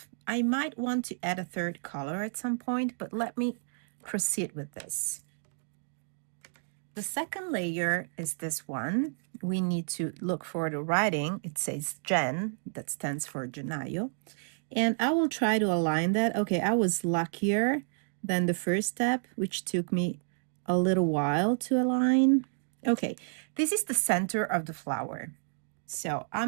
I might want to add a third color at some point, but let me proceed with this. The second layer is this one. We need to look for the writing. It says Jen, that stands for Genayo. And I will try to align that. Okay, I was luckier than the first step, which took me a little while to align. Okay, this is the center of the flower. So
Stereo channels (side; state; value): left; silent; digital silence